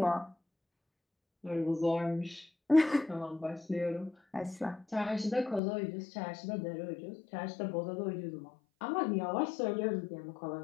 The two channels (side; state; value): right; drops out; at 5.6 s